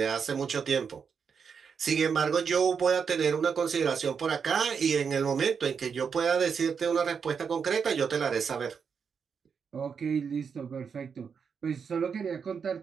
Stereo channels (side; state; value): left; quieter; 6.3 dB